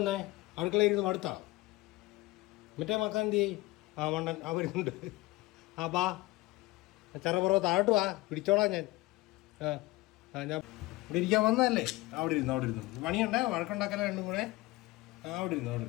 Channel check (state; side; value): quieter; right; 20.8 dB